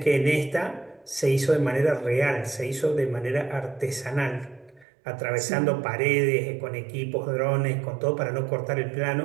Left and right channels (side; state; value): left; drops out; at 4.9 s